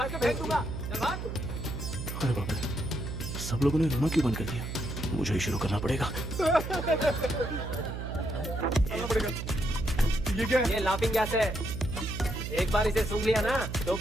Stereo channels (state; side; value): noise; right; hum, 6 dB below the sound